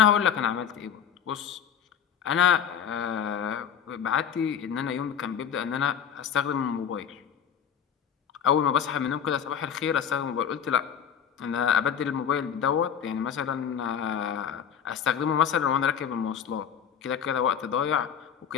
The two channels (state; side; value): quieter; right; 8.0 dB